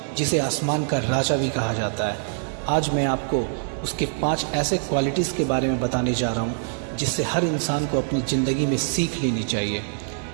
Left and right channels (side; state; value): left; silent; digital silence